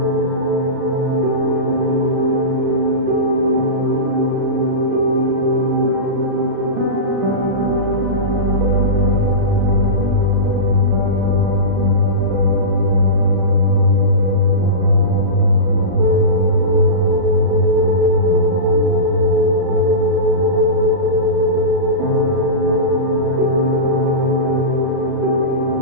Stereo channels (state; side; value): late; left; 37 ms